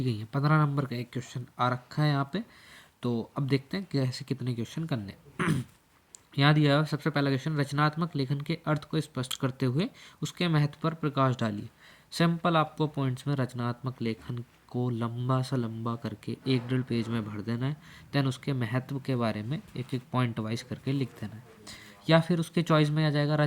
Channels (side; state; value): both; identical; correlation 1.00